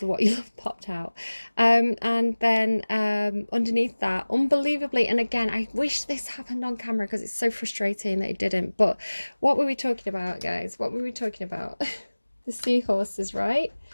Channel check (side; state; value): both; inverted; correlation -1.00